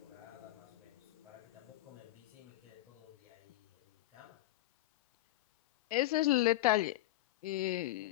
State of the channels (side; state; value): right; quieter; 16.3 dB